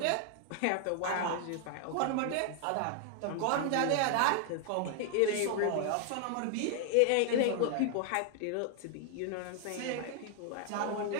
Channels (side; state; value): both; different; correlation 0.00